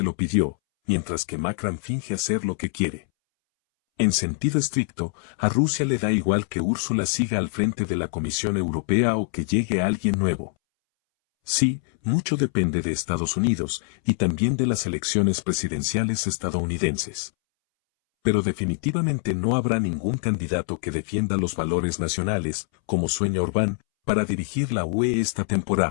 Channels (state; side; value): silent; right; 62 dB below the other